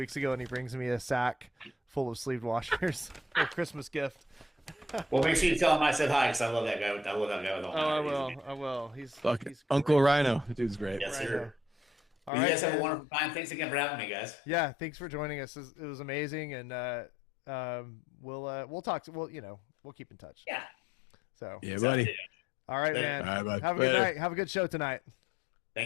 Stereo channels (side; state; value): right; drops out; at 12.3 s